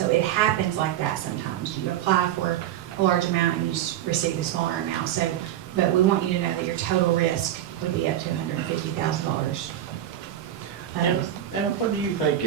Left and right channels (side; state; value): left; quieter; 11.8 dB